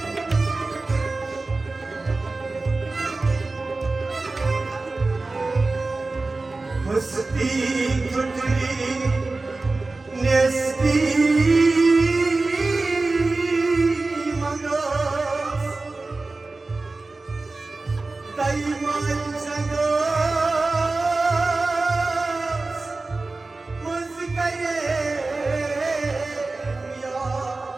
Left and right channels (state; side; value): quieter; left; 3.4 dB